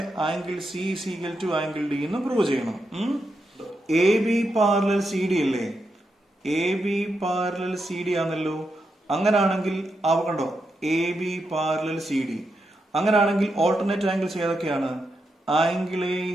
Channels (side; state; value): both; normal; correlation 0.85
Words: angle C is equal to angle D എന്ന് പ്രൂവ് ചെയ്യണം. A B parallel C D അല്ലേ? A B parallel C D ആണല്ലോ. അങ്ങനാണെങ്കിൽ കണ്ടോ, A B parallel C D. അങ്ങനാണെങ്കിൽ ഓൾട്ടർനേറ്റ് ആംഗിൾസ് ഏതൊക്കെയാണ്? Angle A